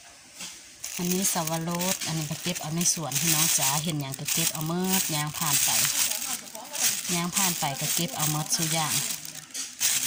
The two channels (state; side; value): identical; both; correlation 1.00